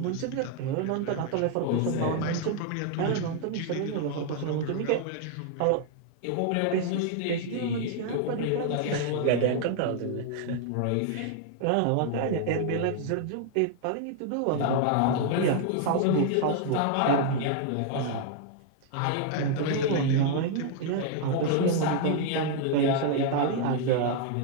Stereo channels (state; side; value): different; both; correlation 0.00